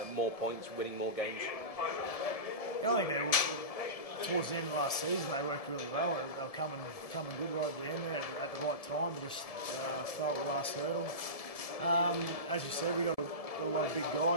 more points, winning more games? I think towards the end of last season they worked really well. They were coming good right at the end there at the right time to just start the last hurdle. As you said, we got a lot of big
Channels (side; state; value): right; late; 1.7 ms